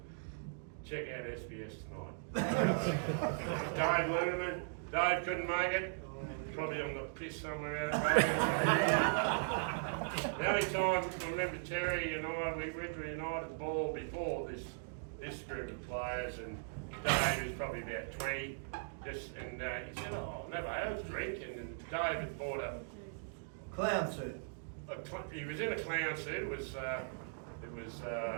Check out SBS tonight. Dave Lunerman. Dave couldn't make it. Probably on the piss somewhere out there. The only time I remember Terry and I, we went to a United ball before this group of players, and Dave was probably about 20. And he said, "Oh, never had a drink." And Dave had bought a Clown suit. He was in a clown suit. It was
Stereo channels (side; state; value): left; silent; digital silence